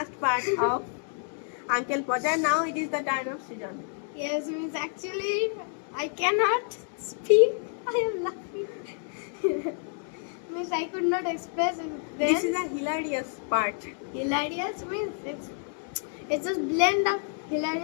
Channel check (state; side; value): silent; right; 59 dB below the other